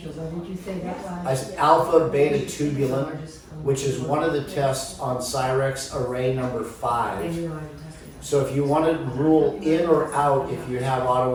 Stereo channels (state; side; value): identical; both; correlation 1.00